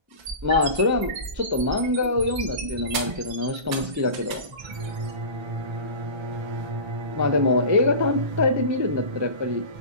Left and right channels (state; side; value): late; left; 1.3 ms